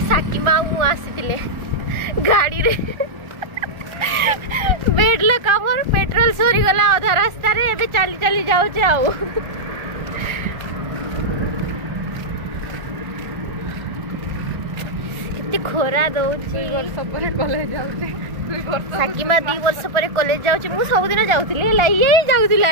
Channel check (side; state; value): left; late; 1.4 ms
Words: साकी मामू आसीतिले गाड़ी रे बेडला कामर पेट्रोल सोरी गला आधा रास्ता रे। एबे चाली चाली जाउचे आउ खोरा दउची। कॉलेज जाउचे साकीमा 2 वर्ष पर कॉलेज जाउची। मु सब दिन जाउथली ला ये